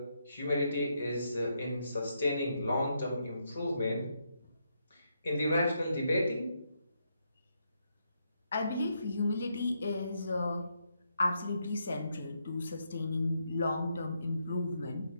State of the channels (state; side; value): inverted; both; correlation -0.79